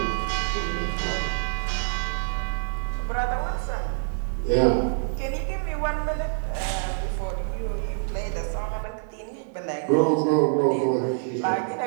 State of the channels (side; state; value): left; silent; digital silence